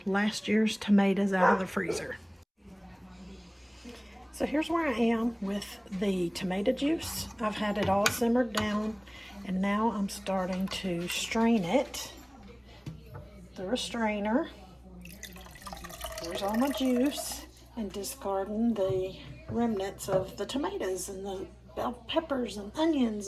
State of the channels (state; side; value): identical; both; correlation 1.00